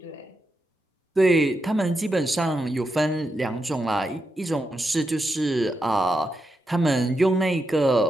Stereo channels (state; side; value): normal; both; correlation 0.85